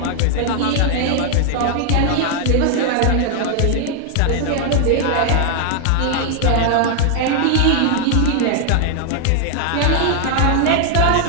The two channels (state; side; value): different; both; correlation 0.00